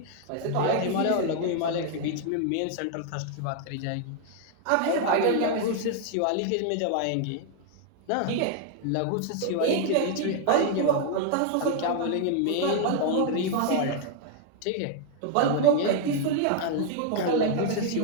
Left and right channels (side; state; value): both; different; correlation 0.00